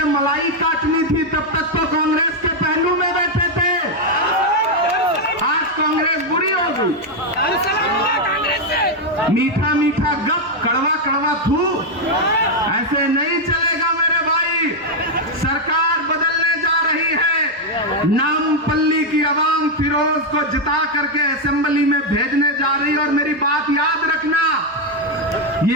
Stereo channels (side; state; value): both; normal; correlation 0.02